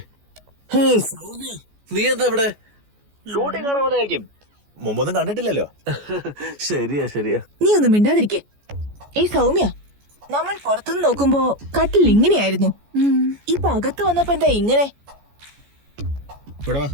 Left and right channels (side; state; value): left; late; 14 ms